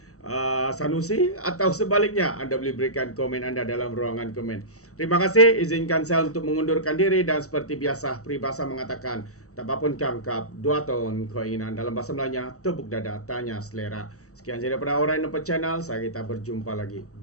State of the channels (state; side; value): late; right; 0.65 ms